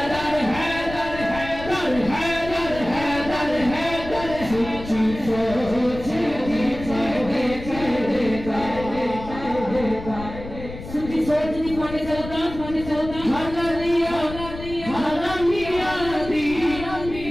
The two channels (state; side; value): noise; left; rumble, 12 dB below the sound